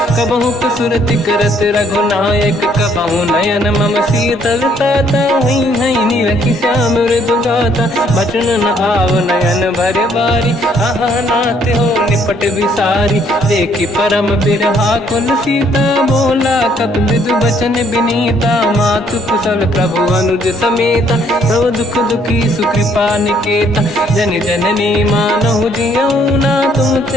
कबहु सुरति करत रघुनायक, कबहु नयन मम शीतल ताता। हई हई नीलखि श्याम मृदु गाता, बचन न आव नयन भर बारी। आहा नाथ हो निपट विसारी, देखी परम बिरहा कुल सीता। बोला कपि विदु बचन बिनीता, मातु कुशल प्रभु अनुज समेता। सब दुख दुखी सुकृपा निकेता, जन जननी मानहु जियौना।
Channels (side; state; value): both; normal; correlation 0.66